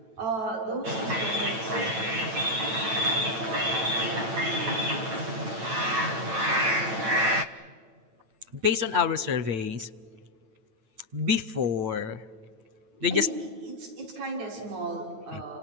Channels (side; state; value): left; late; 9.1 ms